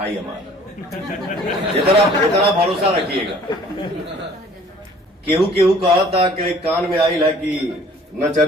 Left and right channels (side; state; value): both; normal; correlation 0.53